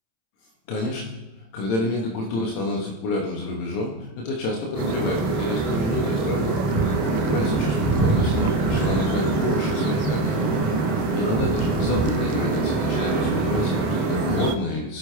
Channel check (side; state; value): right; late; 27 ms